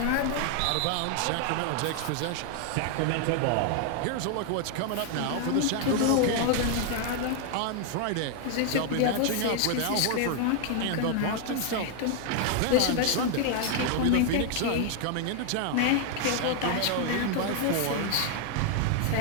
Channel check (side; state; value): both; different; correlation 0.00